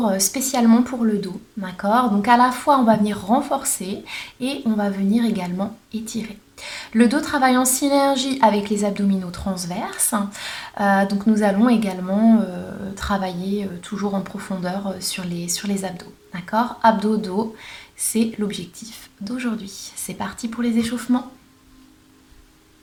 spécialement pour le dos, d'accord? Donc à la fois on va venir renforcer et on va venir également étirer. Le dos travaille en synergie avec les abdominaux transverses, donc nous allons également travailler toujours en profondeur sur les abdos, d'accord? Abdos-dos, c'est l'objectif d'aujourd'hui. C'est parti pour les échauffements.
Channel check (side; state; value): both; identical; correlation 1.00